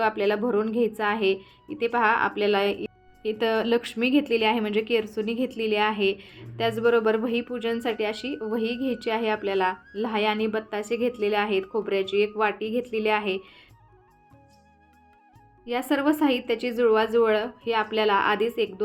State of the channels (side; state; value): both; identical; correlation 1.00